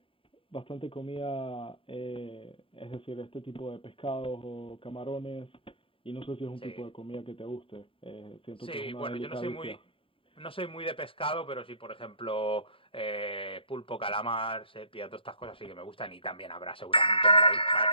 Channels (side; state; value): right; late; 0.26 ms